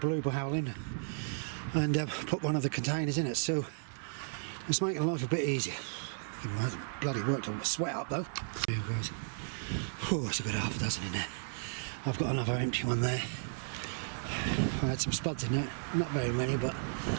in and put one of the containers in it, so it's making life a bit easier. It hasn't bloody worked on my sweat up though. Here guys. Oh, that's a good half a dozen in there. I've got another empty one there. I had some spuds in there, not very many, but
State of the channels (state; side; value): silent; left; 55 dB below the other